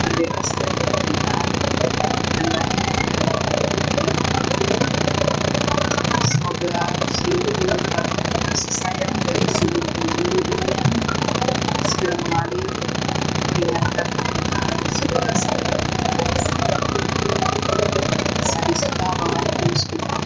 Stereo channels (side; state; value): both; identical; correlation 1.00